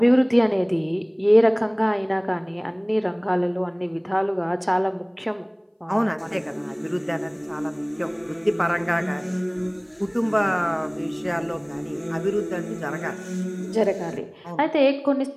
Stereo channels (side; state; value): both; identical; correlation 1.00